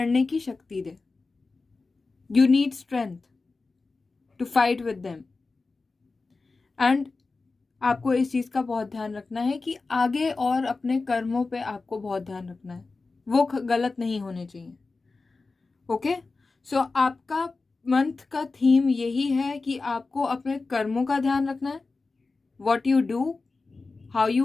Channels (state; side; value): quieter; right; 3.9 dB